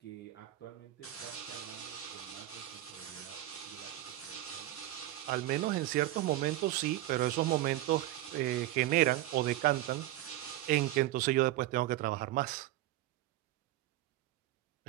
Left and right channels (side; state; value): left; quieter; 15.5 dB